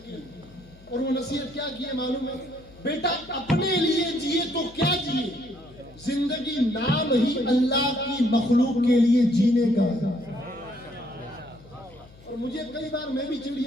کی, اور وہ نصیحت کیا کی ہے معلوم ہے, بیٹا اپنے لیے جیے تو کیا جیے, زندگی نام ہی اللہ کی مخلوق کے لیے جینے کا ہے. اور مجھے کئی بار میں بھی چڑ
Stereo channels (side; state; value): left; noise; hum, 23 dB below the sound